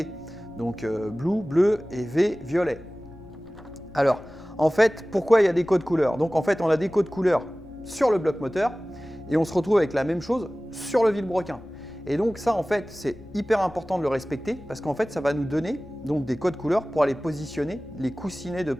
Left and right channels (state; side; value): noise; left; rumble, 24 dB below the sound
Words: donc bleu et V, violet. Alors, en fait, pourquoi il y a des codes couleurs? Donc en fait, on a des codes couleurs sur le bloc moteur et on se retrouve avec la même chose sur le vilebrequin. Et donc ça, en fait, c'est hyper important de le respecter parce qu'en fait, ça va nous donner donc, des codes couleurs pour aller positionner les coussinets de